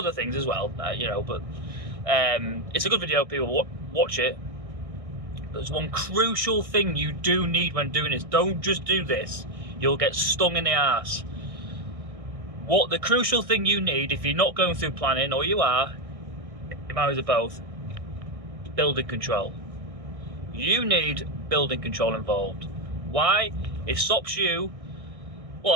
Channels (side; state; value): left; late; 1.6 ms